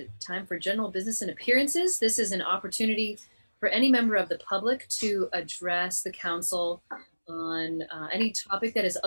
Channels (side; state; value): both; inverted; correlation -1.00